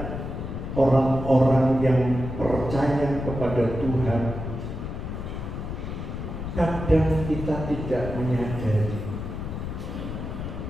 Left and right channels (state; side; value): noise; left; rumble, 6 dB below the sound